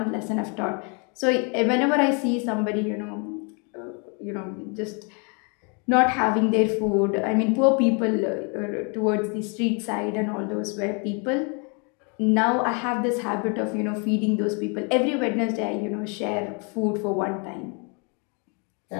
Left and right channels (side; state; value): right; quieter; 35.6 dB